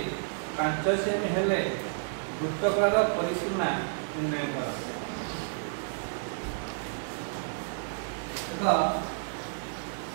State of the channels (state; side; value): silent; left; digital silence